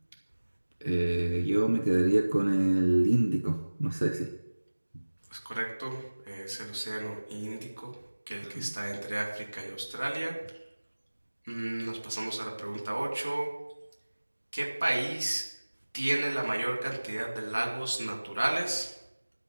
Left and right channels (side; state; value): both; inverted; correlation -1.00